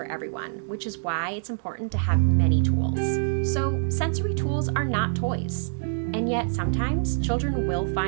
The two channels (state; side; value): silent; left; digital silence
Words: everyone, which is why it's important to have many tools. So, sensory tools are not toys, and yet sometimes children will